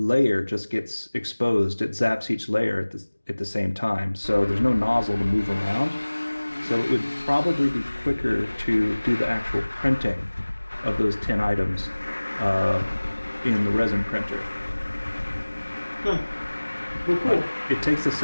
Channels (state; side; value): inverted; both; correlation -1.00